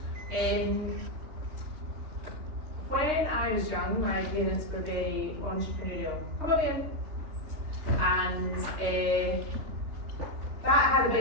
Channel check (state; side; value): late; left; 2.9 ms